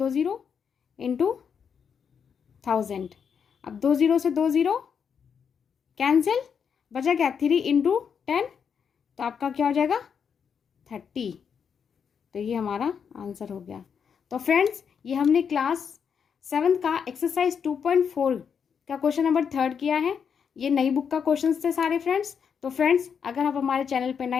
0 इंटू 1000। अब 2 0 से 2 0 कैंसिल, बचा क्या 3 इंटू 10, तो आपका क्या हो जाएगा 30। तो ये हमारा आंसर हो गया। तो फ्रेंड्स ये हमने क्लास 7 का एक्सरसाइज 2.4 का क्वेश्चन नंबर 3 किया है। ये नई बुक का क्वेश्चंस थे सारे फ्रेंड्स। तो फ्रेंड्स अगर आप हमारे चैनल पर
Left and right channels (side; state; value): right; quieter; 7.0 dB